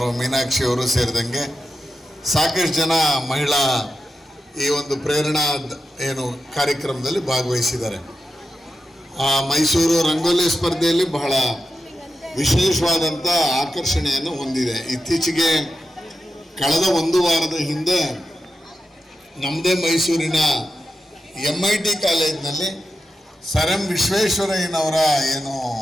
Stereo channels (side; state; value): both; normal; correlation 0.90